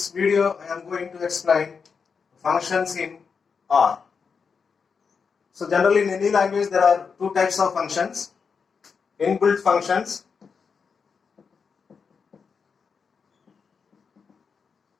video I am going to explain functions in R. So generally in any language there are two types of functions: inbuilt functions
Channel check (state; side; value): quieter; right; 5.7 dB